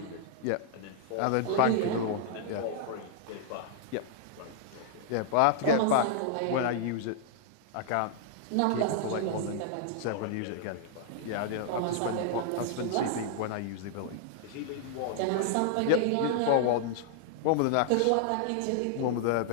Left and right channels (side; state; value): both; different; correlation -0.01